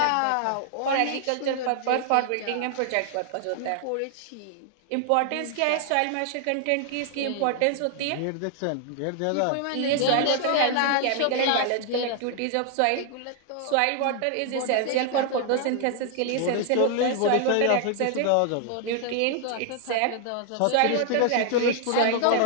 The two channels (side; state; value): both; different; correlation 0.00